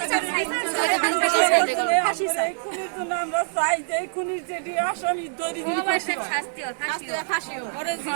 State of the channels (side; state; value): left; silent; digital silence